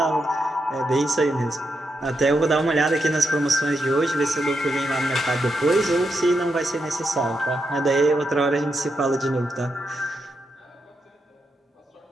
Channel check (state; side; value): normal; both; correlation 0.84